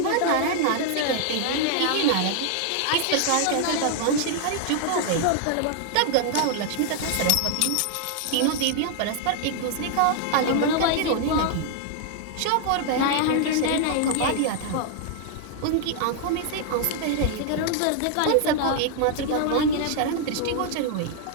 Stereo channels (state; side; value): different; both; correlation 0.00